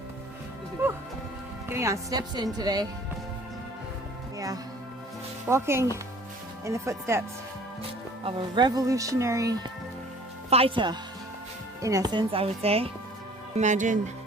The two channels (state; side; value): normal; both; correlation 0.51